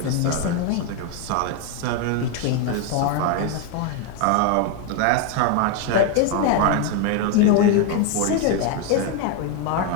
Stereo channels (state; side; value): different; both; correlation 0.01